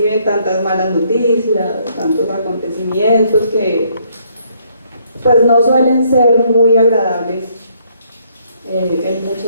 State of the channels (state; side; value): inverted; both; correlation -0.68